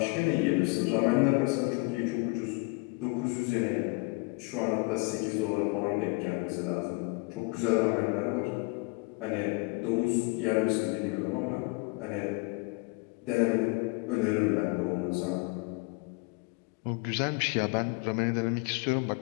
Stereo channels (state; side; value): quieter; right; 28.8 dB